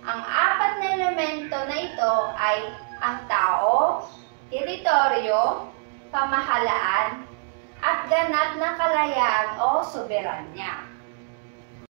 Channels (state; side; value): silent; left; digital silence